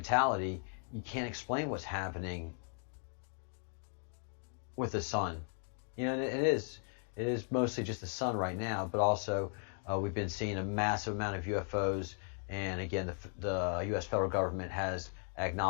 you can't explain what's happening with the sun. It is mostly just the sun right now, but also we've been seeing a massive amount of UFOs, and again, the U.S. federal government has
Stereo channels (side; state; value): right; silent; 53 dB below the other